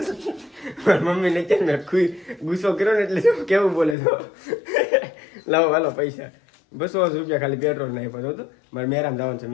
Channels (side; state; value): right; drops out; at 4.0 s